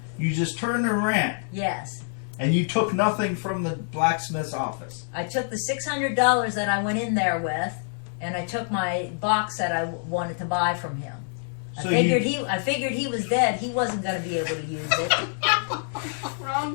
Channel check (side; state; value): right; silent; digital silence